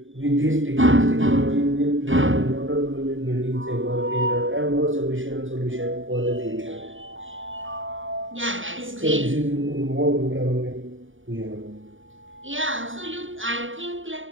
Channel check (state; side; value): late; left; 0.57 ms